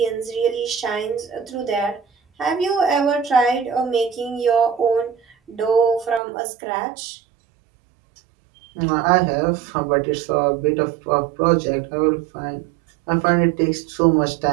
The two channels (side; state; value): left; drops out; at 6.2 s